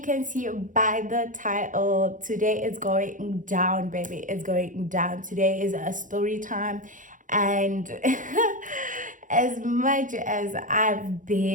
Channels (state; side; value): late; left; 0.38 ms